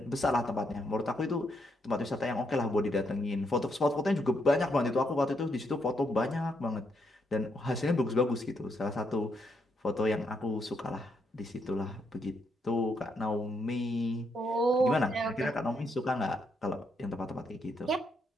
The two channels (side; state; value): both; normal; correlation 0.78